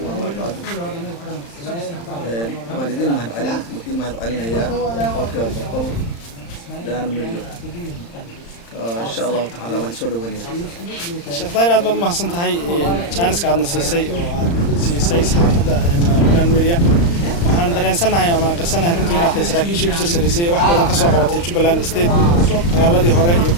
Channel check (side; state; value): right; late; 35 ms